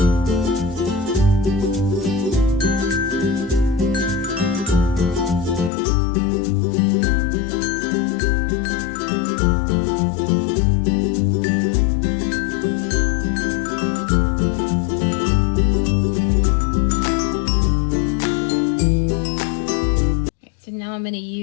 So now I'm going to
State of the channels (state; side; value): drops out; right; at 5.7 s